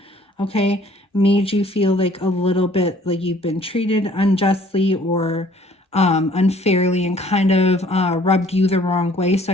okay? Made you feel like a little bit like you've been treated unjustly or unfairly and kind of rubbed you the wrong way. So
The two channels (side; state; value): both; normal; correlation 0.57